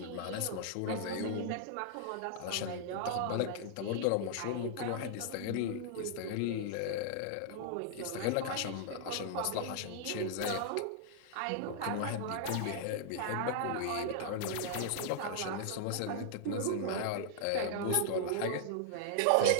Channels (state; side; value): different; both; correlation -0.01